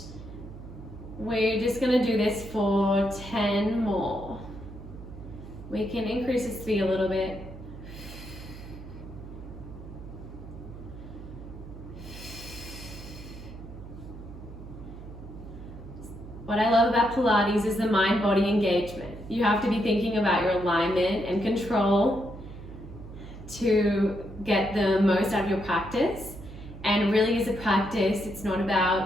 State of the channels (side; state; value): right; noise; hum, 14 dB below the sound